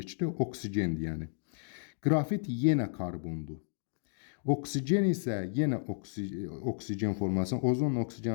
oksigendir yəni. Qrafit yenə karbondur. Oksigen isə yenə oksigen formulasında, ozonla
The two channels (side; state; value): right; silent; digital silence